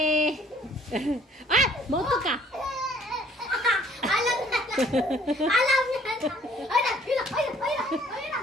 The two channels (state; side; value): normal; both; correlation 0.58